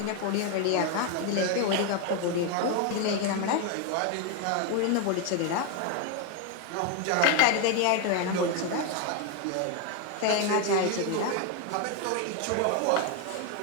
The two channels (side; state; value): both; different; correlation 0.01